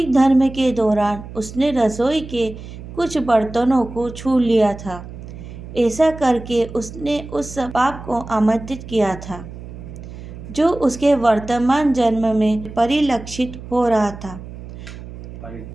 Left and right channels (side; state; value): right; noise; hum, 13 dB below the sound